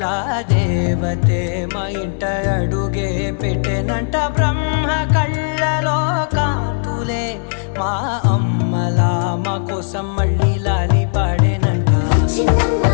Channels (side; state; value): right; silent; 68 dB below the other